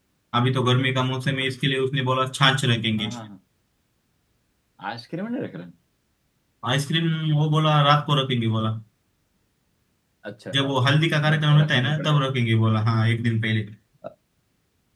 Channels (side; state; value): both; identical; correlation 1.00